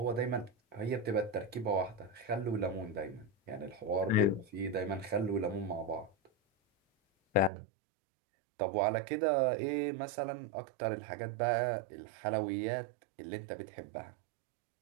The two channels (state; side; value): drops out; left; at 7.5 s